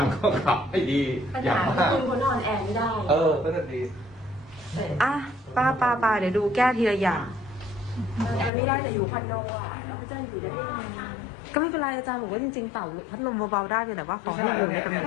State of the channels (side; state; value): right; drops out; at 8.5 s